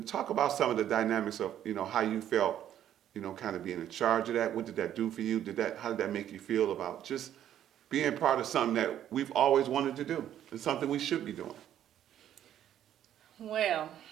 talk about some of the dynamics of, how you felt, kind of being in charge of that. What did that do for you? How did that make you feel about just being part of something that we've always wanted to do and something we should be doing? Well,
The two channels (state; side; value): quieter; left; 10.9 dB